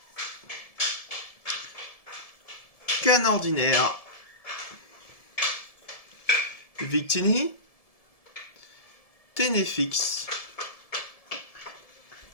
Canne ordinaire, Victini, Ténéfix,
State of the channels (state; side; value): late; right; 1.7 ms